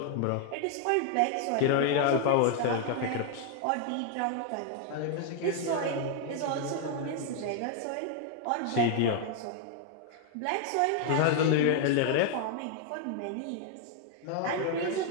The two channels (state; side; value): different; both; correlation 0.00